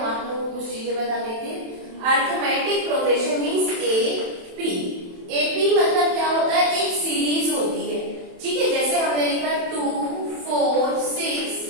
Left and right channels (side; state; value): left; late; 27 ms